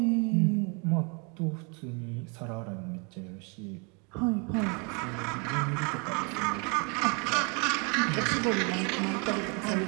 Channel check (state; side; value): quieter; left; 33.8 dB